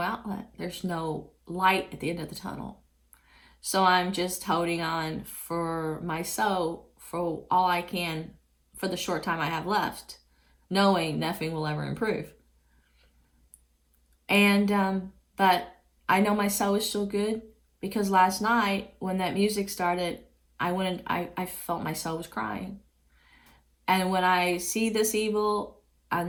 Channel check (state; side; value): identical; both; correlation 1.00